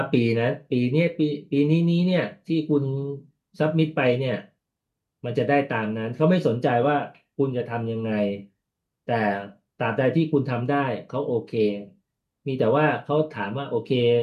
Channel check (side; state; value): both; identical; correlation 1.00